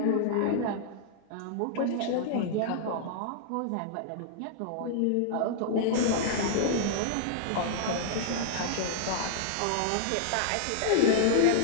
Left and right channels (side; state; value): both; different; correlation -0.01